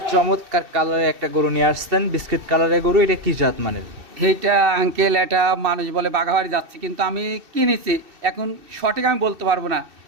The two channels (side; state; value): left; late; 2.6 ms